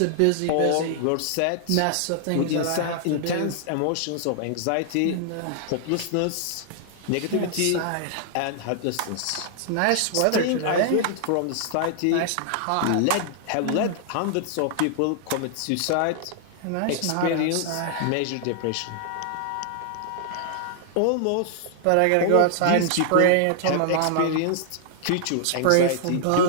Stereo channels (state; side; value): different; both; correlation -0.01